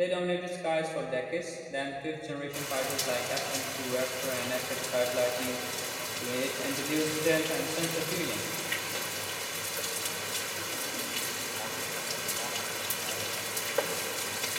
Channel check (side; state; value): both; identical; correlation 1.00